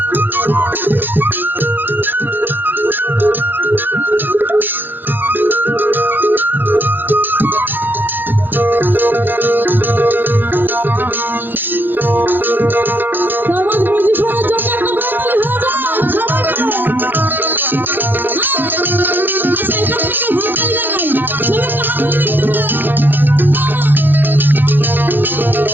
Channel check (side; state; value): left; late; 0.093 ms